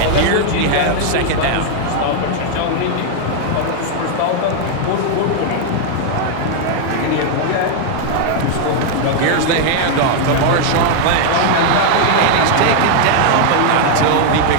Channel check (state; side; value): different; both; correlation 0.00